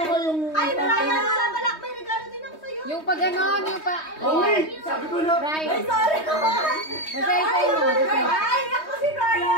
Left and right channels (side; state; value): right; late; 3.2 ms